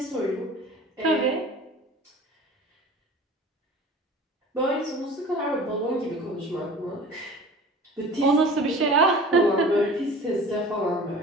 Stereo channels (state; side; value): normal; both; correlation 0.42